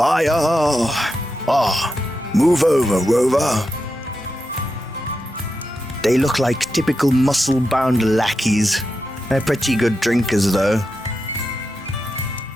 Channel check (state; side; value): normal; both; correlation 0.88